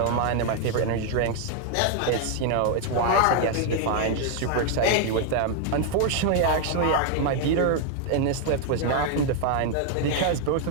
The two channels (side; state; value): both; different; correlation 0.00